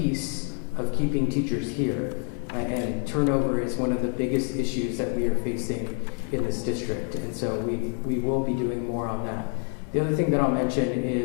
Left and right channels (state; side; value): quieter; right; 38.8 dB